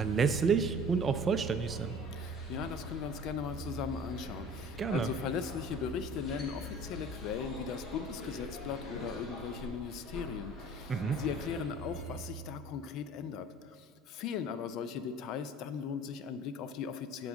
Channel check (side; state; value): both; normal; correlation 0.45